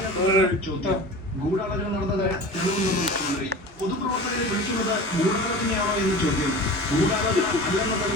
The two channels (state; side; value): normal; both; correlation 0.35